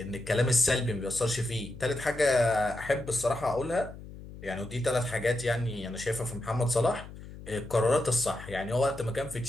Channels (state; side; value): noise; left; hum, 14 dB below the sound